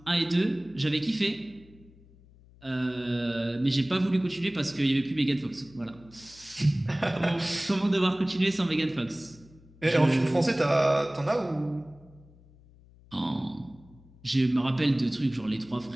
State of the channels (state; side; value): noise; left; hum, 25 dB below the sound